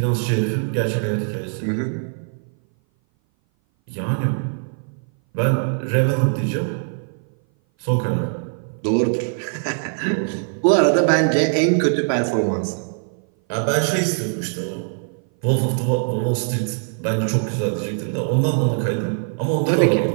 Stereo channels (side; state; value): left; silent; 58 dB below the other